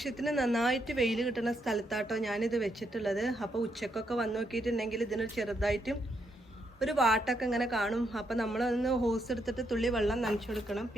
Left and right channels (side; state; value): both; normal; correlation 0.78